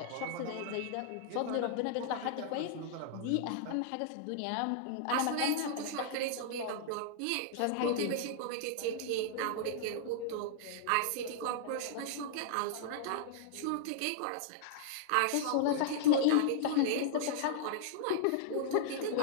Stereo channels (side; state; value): both; different; correlation -0.01